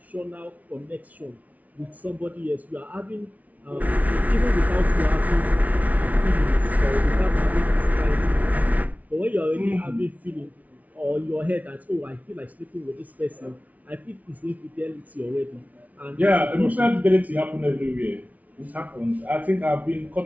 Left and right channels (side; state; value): left; late; 0.072 ms